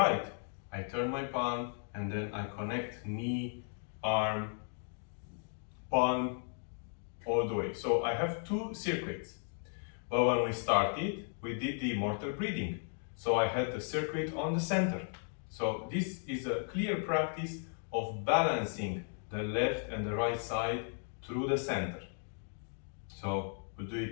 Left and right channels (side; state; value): right; silent; 54 dB below the other